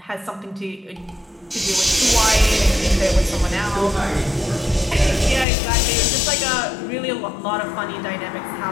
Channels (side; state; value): right; drops out; at 5.5 s